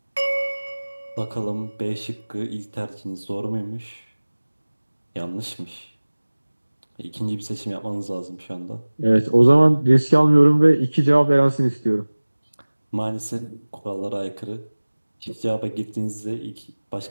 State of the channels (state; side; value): inverted; both; correlation -1.00